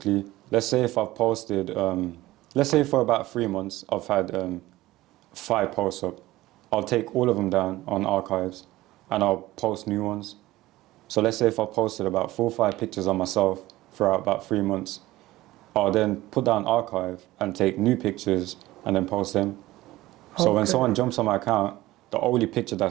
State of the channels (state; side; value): quieter; left; 17.3 dB